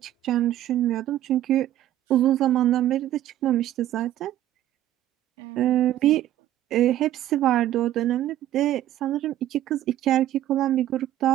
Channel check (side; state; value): left; quieter; 12.9 dB